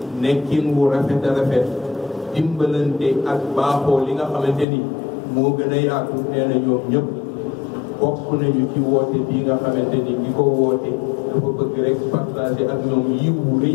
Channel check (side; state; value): right; drops out; at 4.7 s